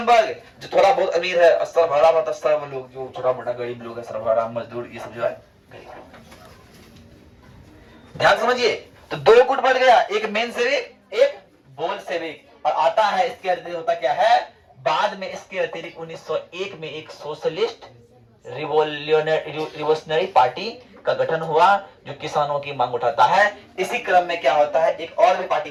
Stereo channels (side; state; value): both; identical; correlation 1.00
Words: वर्ग जो थोड़ा बहुत अमीर है, सर्वहारा मतलब सर्व लोग जो छोटा मोटा गरीब लोग है, सर्वहारा मजदूर, ये सब जो है गरीब लोग। ध्यान समझिए, तो दो गुट बढ़ गया, एक मेनशेविक, एक बोल्शेविक। और आता है इसके अतिरिक्त होता क्या है, बाद में इसके अतिरिक्त 1901 में एक सोशलिस्ट रिवोल्यूशनरी पार्टी का गठन हुआ जो किसानों की मांग उठाता है। इसी क्रम में क्या होता है, एक और भी